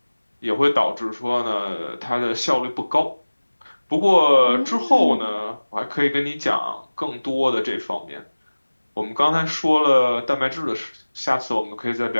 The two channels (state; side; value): inverted; both; correlation -1.00